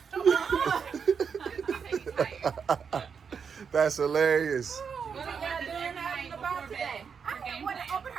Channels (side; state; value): left; quieter; 6.4 dB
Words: bottle. That's hilarious. What are y'all doing out and about today? I didn't want to open